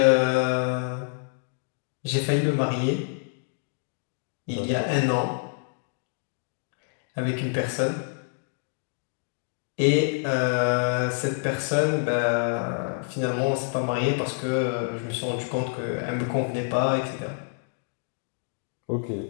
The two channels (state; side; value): silent; right; digital silence